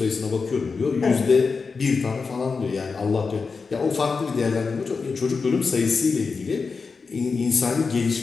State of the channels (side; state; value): right; quieter; 4.8 dB